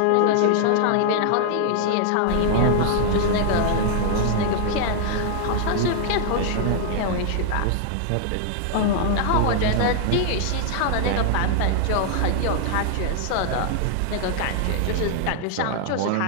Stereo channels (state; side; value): different; both; correlation 0.00